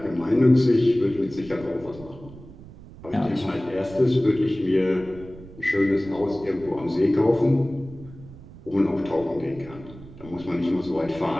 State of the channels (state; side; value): noise; right; rumble, 18 dB below the sound